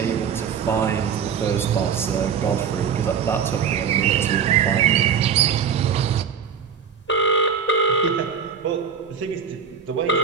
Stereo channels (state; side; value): quieter; left; 7.1 dB